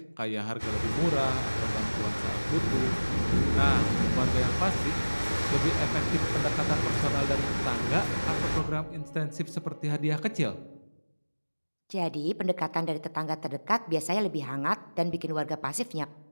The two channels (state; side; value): inverted; both; correlation -1.00